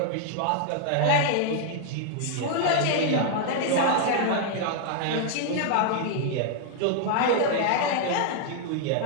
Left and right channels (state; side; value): different; both; correlation 0.00